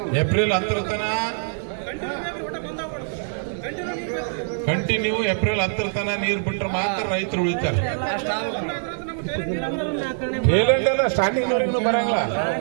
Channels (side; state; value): left; silent; 63 dB below the other